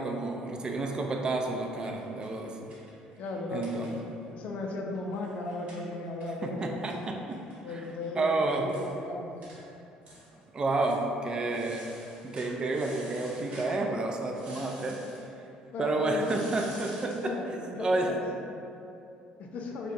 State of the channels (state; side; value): normal; both; correlation 0.67